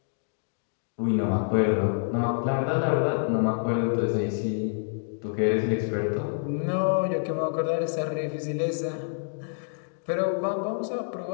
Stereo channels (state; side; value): silent; right; digital silence